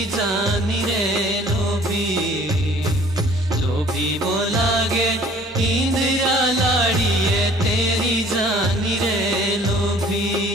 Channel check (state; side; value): normal; both; correlation 0.52